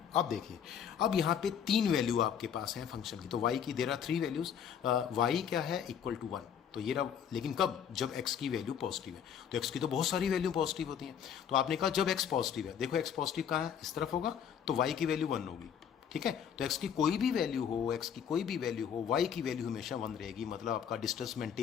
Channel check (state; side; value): quieter; right; 8.3 dB